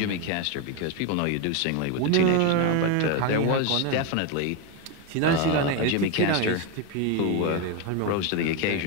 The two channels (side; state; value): both; different; correlation 0.02